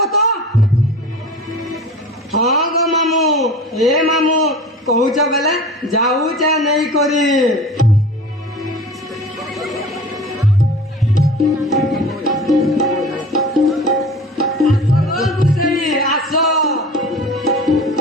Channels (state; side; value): normal; both; correlation 0.38